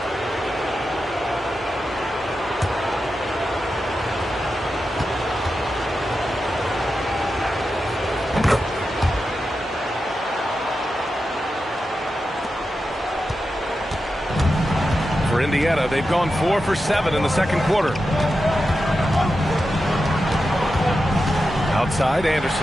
For Indiana, they've gone 4 for 7 in the second quarter. Outside,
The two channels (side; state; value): both; normal; correlation 0.90